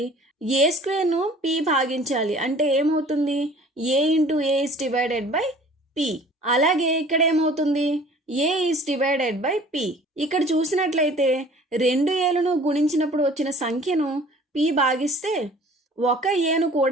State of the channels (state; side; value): normal; both; correlation 0.49